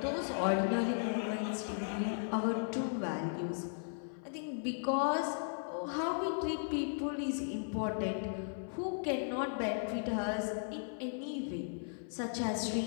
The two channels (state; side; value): silent; right; 53 dB below the other